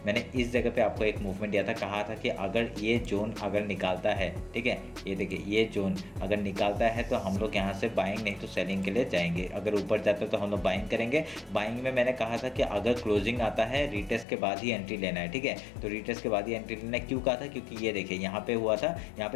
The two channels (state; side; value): drops out; right; at 14.2 s